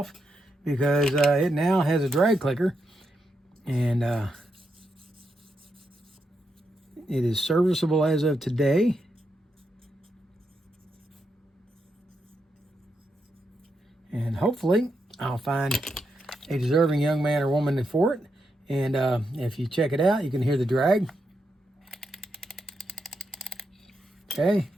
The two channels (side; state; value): both; normal; correlation 0.83